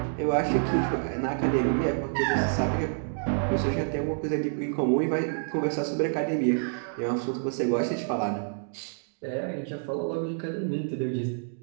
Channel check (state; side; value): silent; left; digital silence